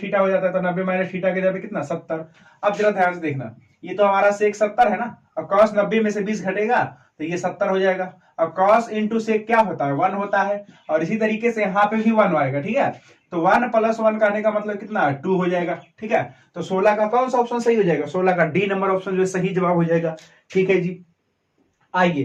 थीटा हो जाता है, तो 90 माइनस थीटा के जगह कितना? 70। अब जरा ध्यान से देखना, ये तो हमारा सेक 70 है ना, और कॉस 90 में से 20 घटेगा तो ये 70 हो जाएगा। और कॉस इंटू सेक क्या होता है? 1 होता है, और इसी तरीके से यहाँ पे भी 1 आएगा। ठीक है, तो 1 + 1 कहने का मतलब कितना? 2 हो जाएगा। ठीक है, तो 16 का कौन सा ऑप्शन सही हो जाएगा? 16 का डी नंबर ऑप्शन जो सही जवाब हो जाएगा। ठीक है जी,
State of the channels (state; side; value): identical; both; correlation 1.00